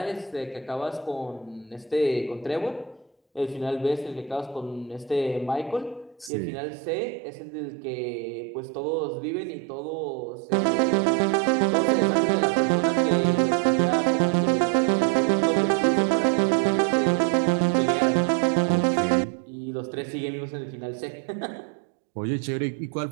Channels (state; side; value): drops out; left; at 6.3 s